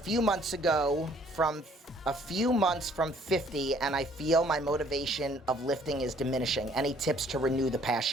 months from 50, and I feel my motivation of lifting is diminishing. Any tips to renew the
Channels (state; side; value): normal; both; correlation 0.60